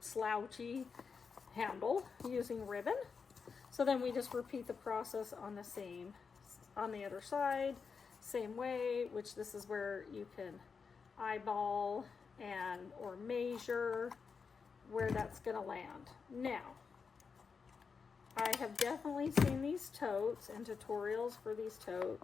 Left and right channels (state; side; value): quieter; right; 5.5 dB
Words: handle using ribbon. So then we just repeat the process on the other side, same way, which this is where you can eyeball and or measure where that's going to land. Now, I have definitely seen these totes and tutorials for these